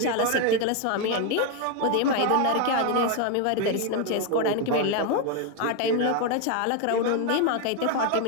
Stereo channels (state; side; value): different; both; correlation 0.01